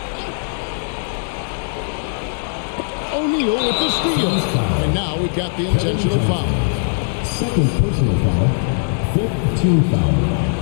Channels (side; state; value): right; silent; digital silence